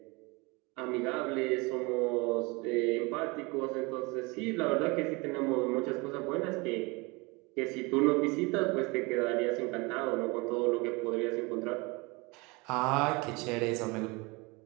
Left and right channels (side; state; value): left; quieter; 26.6 dB